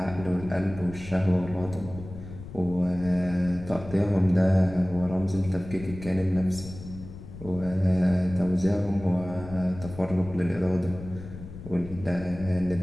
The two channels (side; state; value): left; noise; rumble, 14 dB below the sound